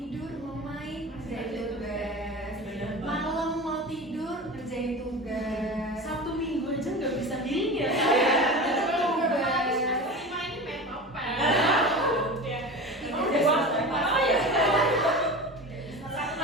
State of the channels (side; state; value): both; normal; correlation 0.31